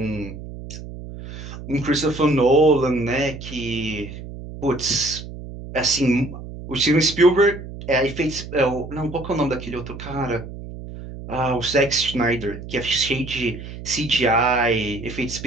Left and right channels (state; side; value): noise; right; hum, 12 dB below the sound